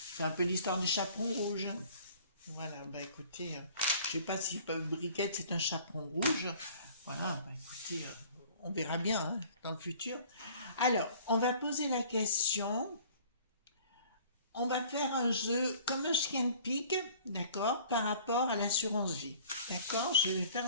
C'est un peu l'histoire du chaperon rouge. Voilà, bah écoutez, je sais pas si Briquette c'est un chaperon rouge. Voilà, bah écoutez, on verra bien hein, dans le futur. Alors, on va poser la question. On va faire un jeu comme un chien de pique, d'accord, par rapport à l'assurance vie. D'accord, je vais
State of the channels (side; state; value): both; inverted; correlation -0.50